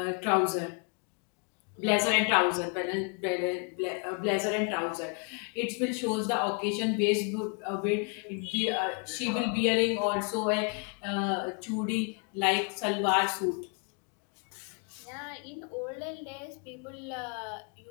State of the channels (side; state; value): right; quieter; 37.6 dB